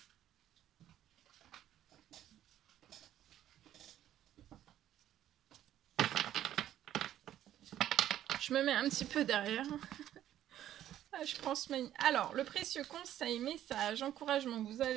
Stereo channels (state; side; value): quieter; left; 12.0 dB